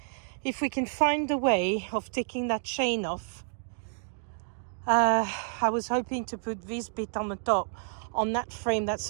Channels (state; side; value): silent; left; digital silence